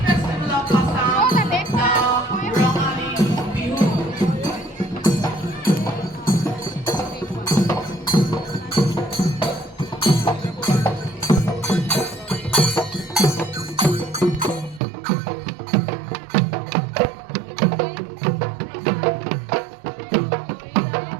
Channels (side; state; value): left; drops out; at 14.8 s